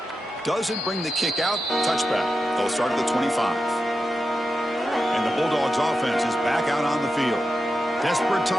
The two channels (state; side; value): normal; both; correlation 0.90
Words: Doesn't bring the kick out. Touchback. They'll start at the 25. And the Bulldogs offense is back out on the field. Desperate